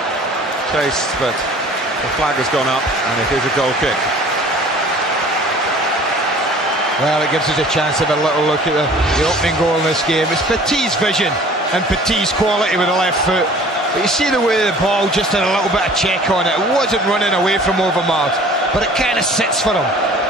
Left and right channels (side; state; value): both; normal; correlation 0.49